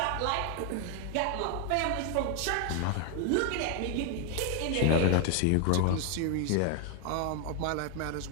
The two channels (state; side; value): different; both; correlation 0.00